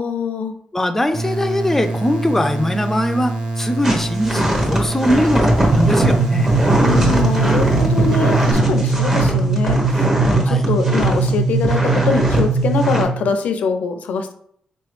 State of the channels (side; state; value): both; normal; correlation 0.73